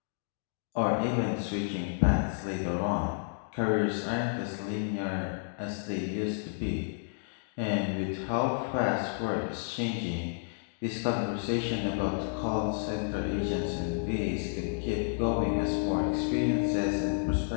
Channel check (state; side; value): silent; right; digital silence